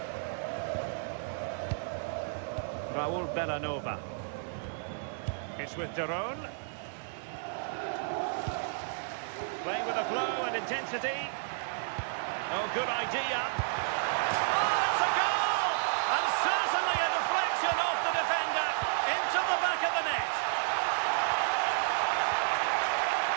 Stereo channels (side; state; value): left; silent; 57 dB below the other